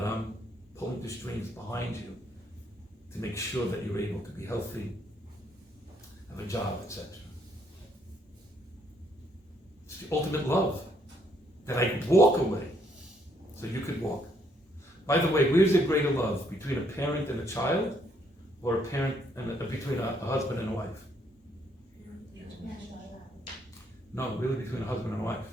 I'm pulling the strings behind you to make sure that you're able to be healthy, have a job, etc. It's the ultimate love. That I walk away so you could walk. By the way, where's the greater love? Between a parent and a child? Or a parent and between a husband and a wife? No, really between a husband and a wife.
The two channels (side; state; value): both; normal; correlation 0.70